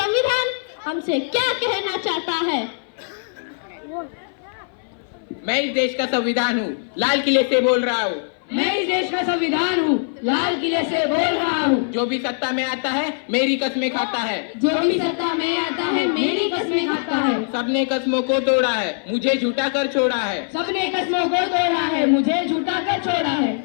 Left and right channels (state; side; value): silent; right; 58 dB below the other